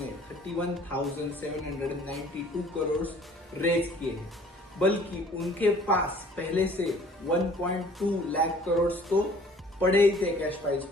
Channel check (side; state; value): both; normal; correlation 0.53